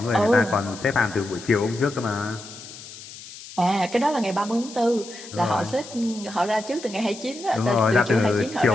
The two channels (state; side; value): noise; left; hiss, 15 dB below the sound